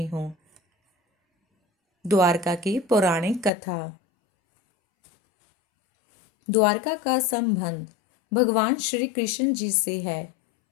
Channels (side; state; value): right; drops out; at 3.5 s